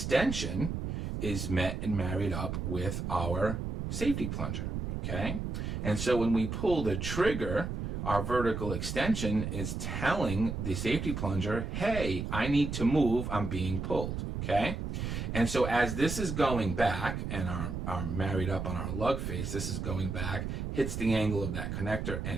is met and married up with our safety plunger, okay? And so when we pull the trigger, our vertical extension is telling the safety plunger, hey, I need to move, I'm being pulled, okay? And so as this is going back, and our married up on our lug face, this is going back, hits the angle of that connector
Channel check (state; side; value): noise; right; rumble, 4 dB below the sound